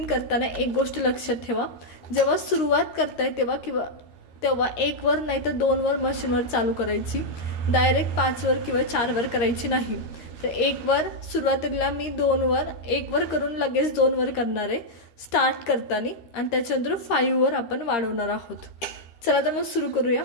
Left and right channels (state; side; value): late; right; 13 ms